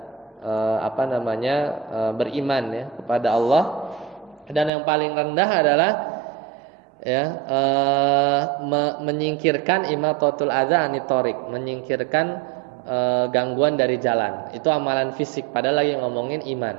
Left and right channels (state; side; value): drops out; left; at 4.7 s